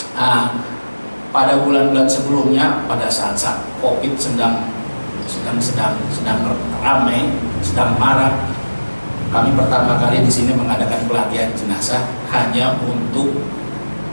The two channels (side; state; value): both; inverted; correlation -1.00